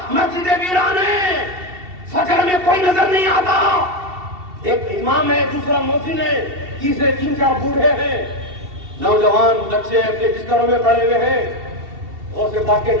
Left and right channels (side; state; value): left; late; 2.7 ms